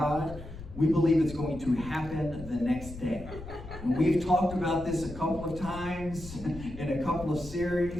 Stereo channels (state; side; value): noise; left; rumble, 13 dB below the sound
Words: we believe it's going to happen the next day. And we've talked about this a couple of times in a couple of